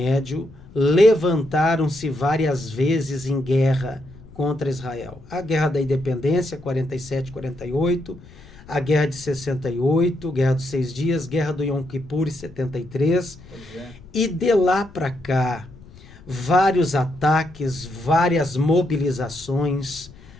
levantaram-se várias vezes em guerra contra Israel. A Guerra da Independência, 47, 48, a Guerra de 68, Guerra dos 6 Dias, Guerra do Yom Kippur, 73. E de lá para cá, vários ataques, várias mobilizações,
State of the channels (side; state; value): left; noise; rumble, 21 dB below the sound